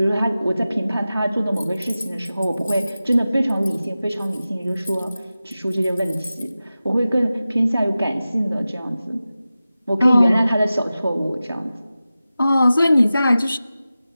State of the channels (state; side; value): inverted; both; correlation -0.95